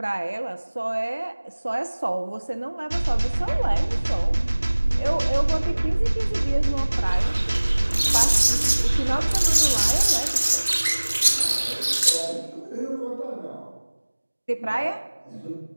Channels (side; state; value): both; inverted; correlation -1.00